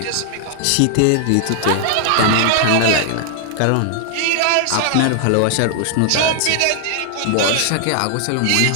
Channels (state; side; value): different; both; correlation 0.00